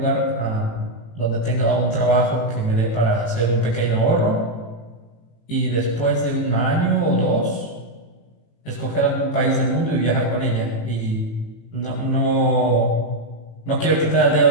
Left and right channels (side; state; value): right; late; 18 ms